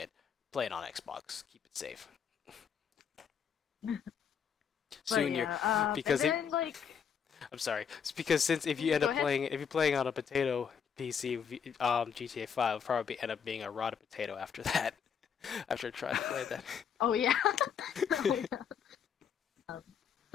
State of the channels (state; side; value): quieter; right; 7.3 dB